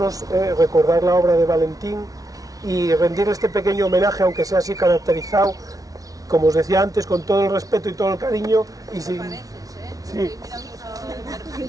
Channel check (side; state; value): left; late; 0.18 ms